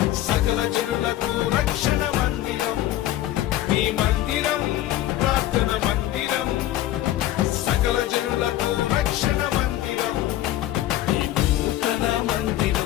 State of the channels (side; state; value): right; quieter; 14.2 dB